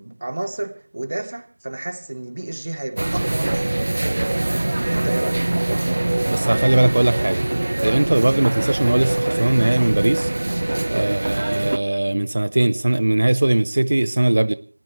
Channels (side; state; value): both; inverted; correlation -1.00